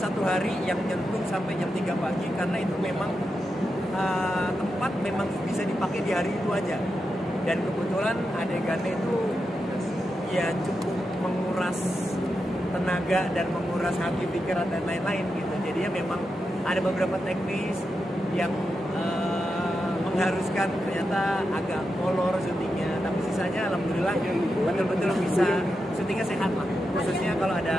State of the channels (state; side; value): normal; both; correlation 0.88